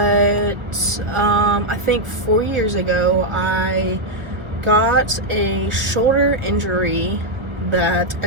I think 4 years ago, I got a shoulder injury that I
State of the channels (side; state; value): left; late; 1.2 ms